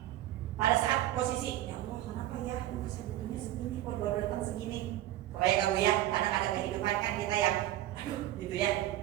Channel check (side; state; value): left; quieter; 14.1 dB